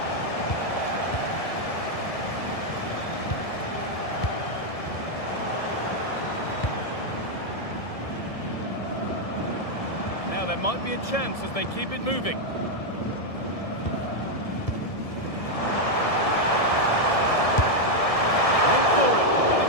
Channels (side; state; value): right; late; 1.7 ms